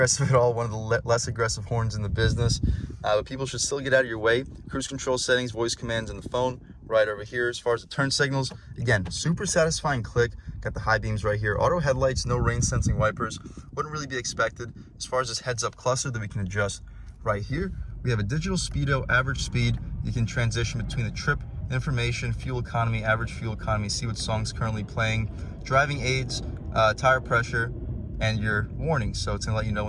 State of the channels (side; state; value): both; identical; correlation 1.00